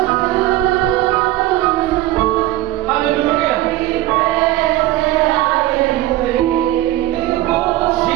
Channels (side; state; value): left; quieter; 15.8 dB